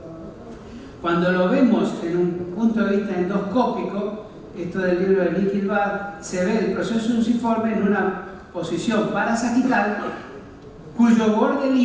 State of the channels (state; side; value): identical; both; correlation 1.00